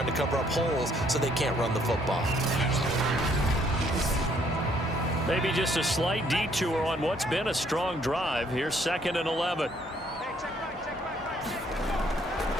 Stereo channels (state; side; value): normal; both; correlation 0.66